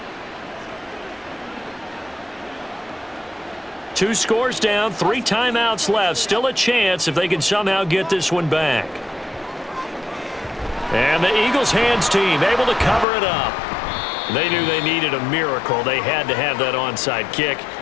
Two scores down, 3 timeouts left. Still a chance if they can somehow get this one back. And the Eagles hands team able to cover it up. They knew they needed a miracle. They had to have that onside kick.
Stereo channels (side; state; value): right; drops out; at 13.1 s